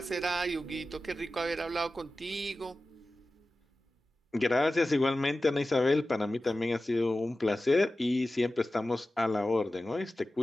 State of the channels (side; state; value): both; normal; correlation 0.95